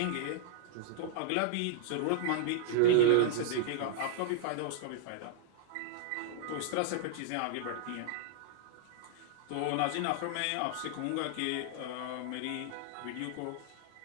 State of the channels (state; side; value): different; both; correlation -0.01